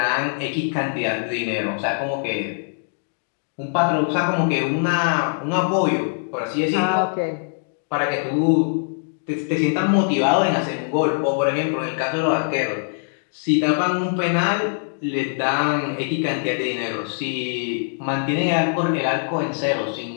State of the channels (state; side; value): silent; right; digital silence